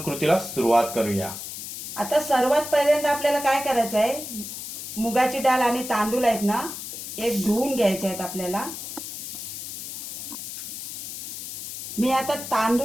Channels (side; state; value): left; noise; hiss, 8 dB below the sound